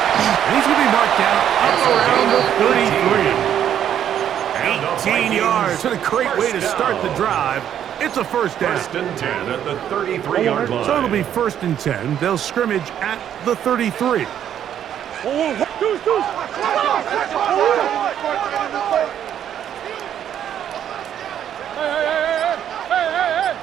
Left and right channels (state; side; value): quieter; left; 9.9 dB